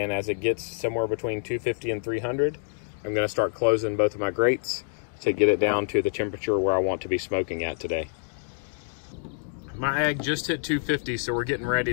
as it gets somewhere between 250 and 300, I'm gonna start closing both of my grates to get it down to the temperature where I want to be smoking at today. My egg just hit 250, so we're getting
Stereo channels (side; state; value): right; silent; digital silence